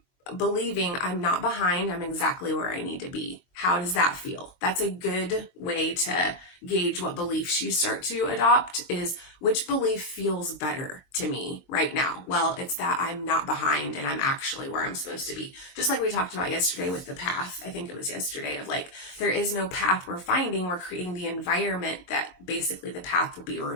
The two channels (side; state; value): right; late; 23 ms